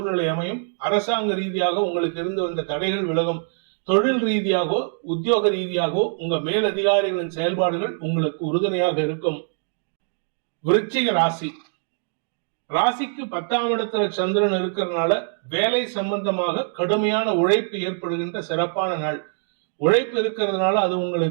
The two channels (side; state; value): left; silent; digital silence